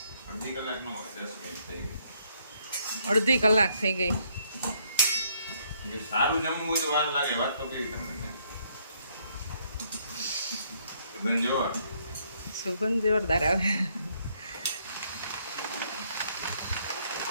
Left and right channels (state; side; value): inverted; both; correlation -0.69